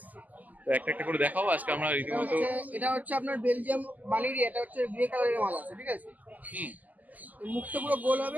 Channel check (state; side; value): late; left; 0.080 ms